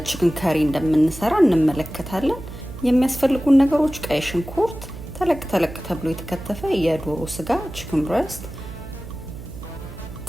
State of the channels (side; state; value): right; noise; hum, 13 dB below the sound